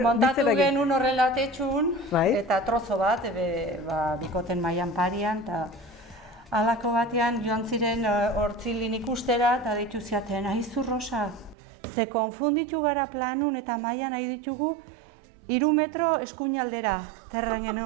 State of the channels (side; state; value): left; drops out; at 11.6 s